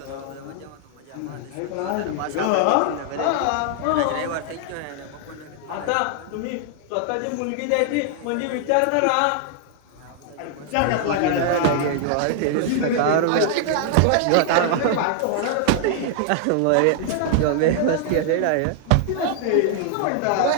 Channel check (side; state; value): both; different; correlation 0.00